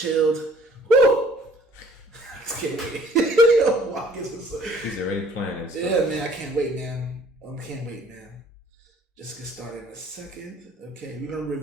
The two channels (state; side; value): normal; both; correlation 0.56